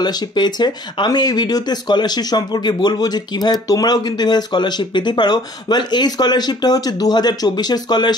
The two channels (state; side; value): normal; both; correlation 0.54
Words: পেয়েছে। আমি এই ভিডিওতে স্কলারশিপ সম্পর্কে বলবো যে কিভাবে তোমরাও কিন্তু এভাবে স্কলারশিপ পেতে পারো। ওয়েল, এই স্কলারশিপটা হচ্ছে 2024-এর